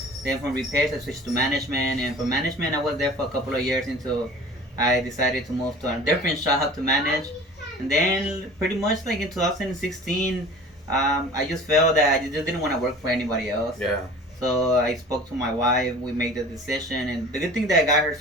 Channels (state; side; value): normal; both; correlation 0.43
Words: Then from repairs, I switched to management, and from management, I was there for a couple of years until I decided to move to a different shop to manage. And then pretty much like in 2016, I just felt that I just didn't want to work for anybody else. Yeah. So I spoke to my wife. We made the decision, and the good thing that I got her